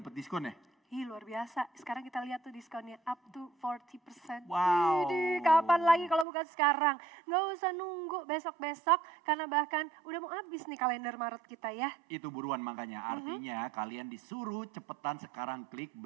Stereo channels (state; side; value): drops out; left; at 6.2 s